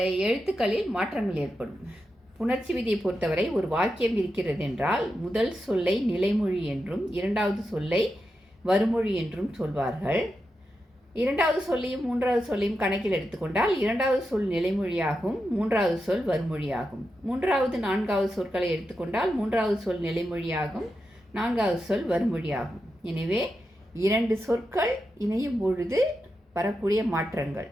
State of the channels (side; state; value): both; normal; correlation 0.88